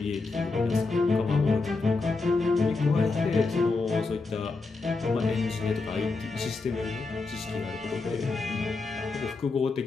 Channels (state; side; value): quieter; right; 3.8 dB